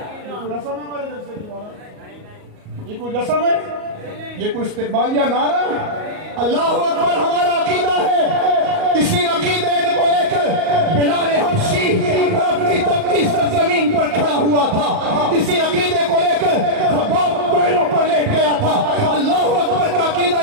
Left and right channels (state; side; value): late; left; 38 ms